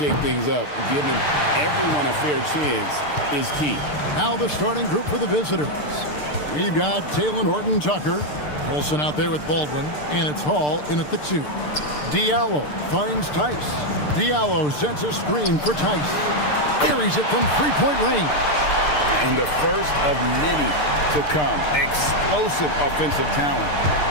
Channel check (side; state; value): right; late; 6.7 ms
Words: things up. Giving everyone a fair chance is key. Now the starting group for the visitors. We've got Taylor Horton-Tucker, Olsen out there with Baldwin, and it's Hall in at the 2. Diallo finds Tice. Diallo sets a screen for Tice. Carries it from three-point range. And the first of many to come. Explosive offensive talent